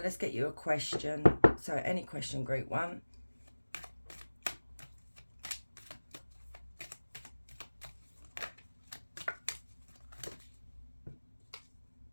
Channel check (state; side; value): inverted; both; correlation -1.00